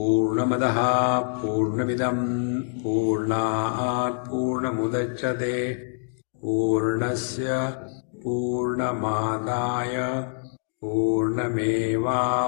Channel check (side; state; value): right; silent; digital silence